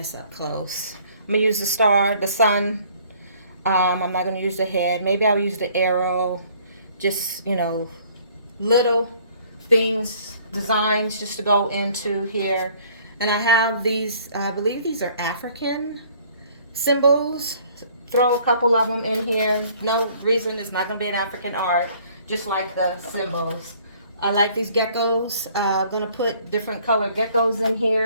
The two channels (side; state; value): both; inverted; correlation -0.58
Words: up close. I'm going to use the star, the sun. I'm not going to use the head. Maybe I'll use the arrow. Just, you know, little things, designs just to go into here. And I have these, I believe these are African symbols. Throw a couple of them in here. No reason it's not going to be an African art, just like the symbols. I like these geckos. I'm going to put different colored geckos in